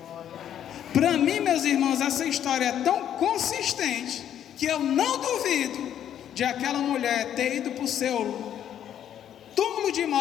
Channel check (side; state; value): right; quieter; 10.1 dB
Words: Para mim, meus irmãos, essa história é tão consistente que eu não duvido de aquela mulher ter ido para o seu túmulo de